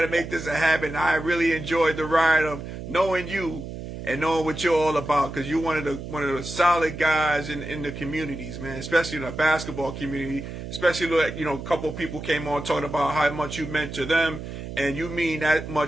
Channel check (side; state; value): right; noise; hum, 9 dB below the sound